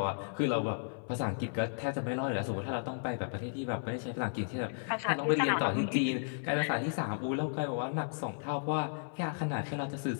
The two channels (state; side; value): silent; right; 55 dB below the other